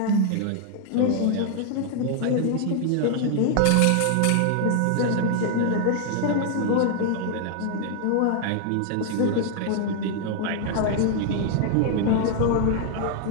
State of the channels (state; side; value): different; both; correlation 0.00